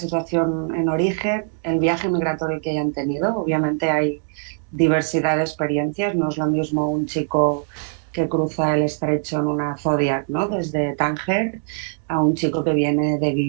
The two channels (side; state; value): left; silent; digital silence